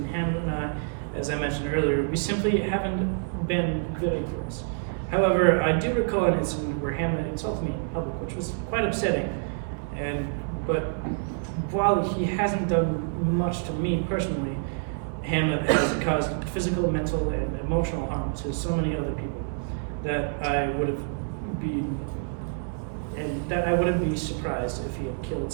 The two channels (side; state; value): left; silent; digital silence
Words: Hamlet and I. As I mentioned earlier, we simply haven't been very close. However, I do recall an incident where Hamlet insulted me in public, which was quite upsetting. But while he hasn't done much to me personally, Hamlet has caused physical, mental, and emotional harm to so many other people that I wouldn't be surprised if he had killed